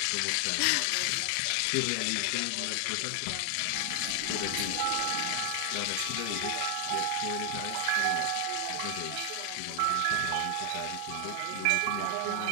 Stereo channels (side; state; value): both; different; correlation 0.00